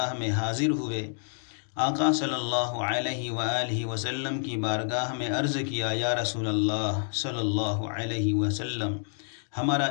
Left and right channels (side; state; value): right; silent; digital silence